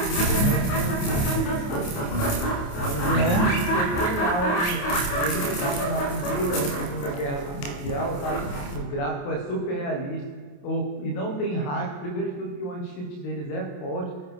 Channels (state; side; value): late; right; 28 ms